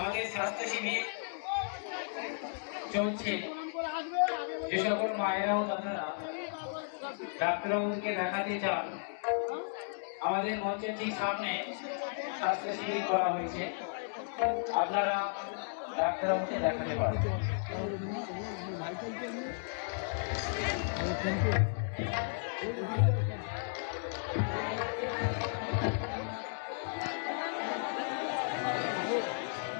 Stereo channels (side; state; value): right; silent; digital silence